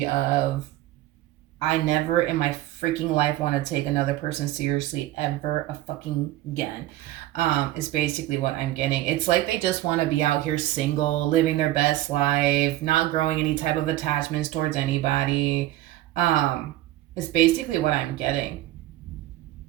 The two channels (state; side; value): quieter; left; 15.5 dB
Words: of, I never in my freaking life want to take another person seriously ever a fucking again. Is basically what I'm getting. It's like they just want to be out here single, living their best life, not growing any type of attachments towards anybody. It's basically what I'm getting.